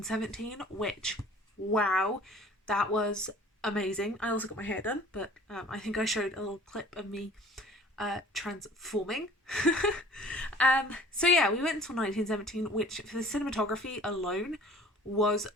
which, wow, that was amazing. I also got my hair done, but I think I showed a little clip of me transforming. We went until 1917, which for the cinematography alone was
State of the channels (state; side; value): normal; both; correlation 0.49